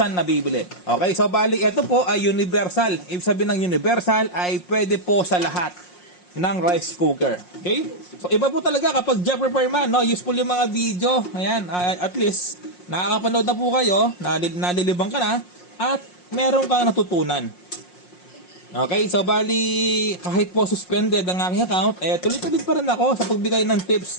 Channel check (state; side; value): late; right; 5.6 ms